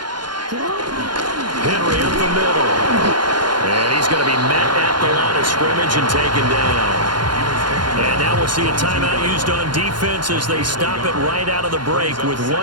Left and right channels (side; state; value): left; late; 0.71 ms